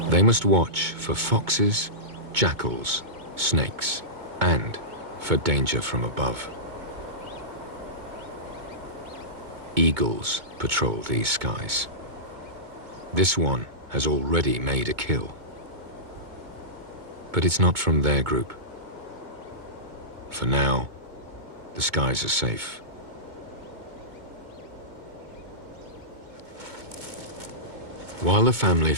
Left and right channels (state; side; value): late; left; 2.2 ms